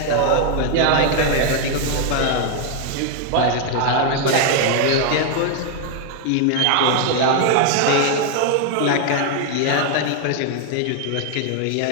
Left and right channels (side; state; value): both; different; correlation 0.00